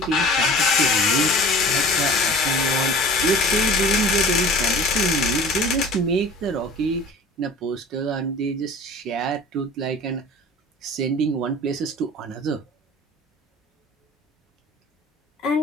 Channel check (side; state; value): both; normal; correlation 0.43